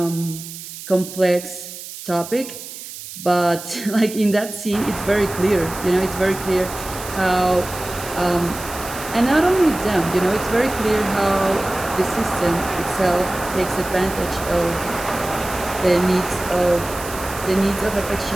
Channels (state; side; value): noise; right; hiss, 12 dB below the sound